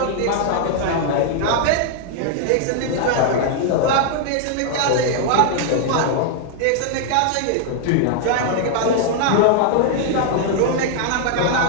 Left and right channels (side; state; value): both; different; correlation 0.00